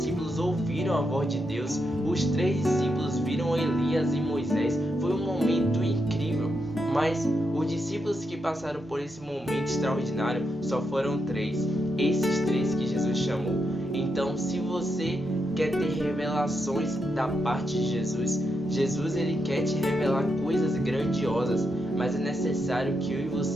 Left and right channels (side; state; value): both; normal; correlation 0.83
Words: ouviram a voz de Deus. Os 3 discípulos viram Elias e Moisés. Foi um momento incrível. Mas os discípulos que passaram por esse momento extraordinário só foram 3. Esses 3 que Jesus chamou. Então, se você quer ter revelações da parte de Jesus, Jesus ele quer te revelar coisas grandiosas, mas é necessário que eu e